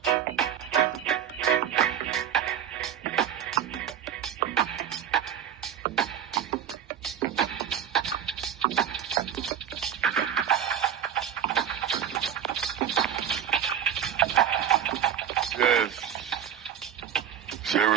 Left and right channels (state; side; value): quieter; left; 9.2 dB